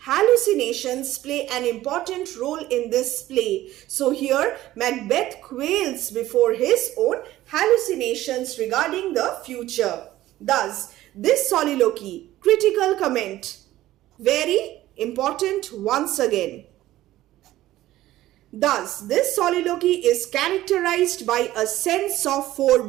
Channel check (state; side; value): quieter; left; 15.1 dB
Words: Hallucinations play an important role in this play. So here Macbeth quails before his own hallucinations regarding the future. Thus, this soliloquy, critical comment, very important once again. Thus, this soliloquy is characterized by a sense of